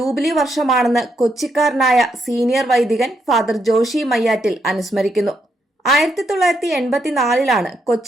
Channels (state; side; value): normal; both; correlation 0.78